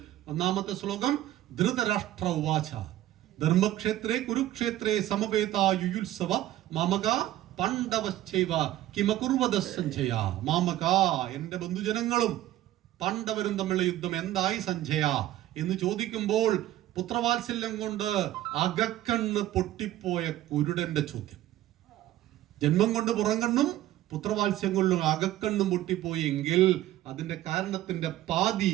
1-ാമത്തെ ശ്ലോകം, ധൃതരാഷ്ട്ര ഉവാച ധർമ്മക്ഷേത്രേ കുരുക്ഷേത്രേ സമവേതാ യുയുത്സവ മാമക പാണ്ഡവശ്ചൈവ കിമകുർവദ സഞ്ജയ. മാമക, എന്റെ ബന്ധുജനങ്ങളും പാണ്ഡവരും തമ്മിലുള്ള യുദ്ധം എന്തായി സഞ്ജയ എന്ന് ചോദിക്കുമ്പോൾ പുത്രവാത്സല്യം കൊണ്ട് അകക്കണ്ണ് പൊട്ടിപ്പോയ കുരുടന്റെ ചോദ്യം. ജന്മം കൊണ്ട് പുറംകണ്ണും പുത്രവാത്സ്യം കൊണ്ടും അകക്കണ്ണും പൊട്ടിപ്പോയി എങ്കിൽ അതിന്റെ കാരണത്തിന്റെ പാതി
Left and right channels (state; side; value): quieter; left; 14.1 dB